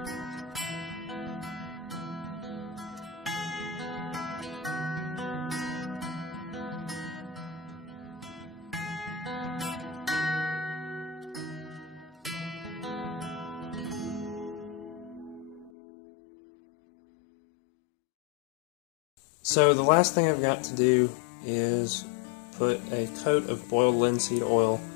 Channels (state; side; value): drops out; right; at 15.7 s